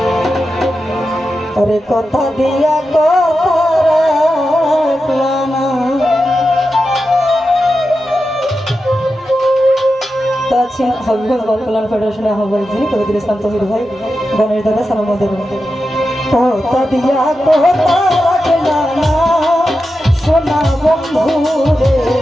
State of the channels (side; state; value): both; normal; correlation 0.90